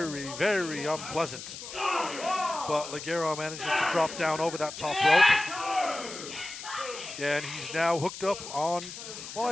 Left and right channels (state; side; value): noise; left; hiss, 11 dB below the sound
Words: very unpleasant. But Ligero manages to drop down over that top rope. And he's now hooked up on, well,